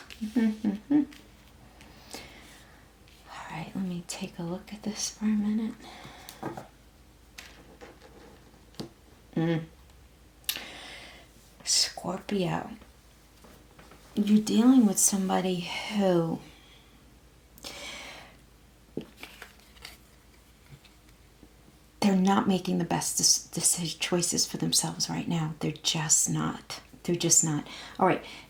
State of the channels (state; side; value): identical; both; correlation 1.00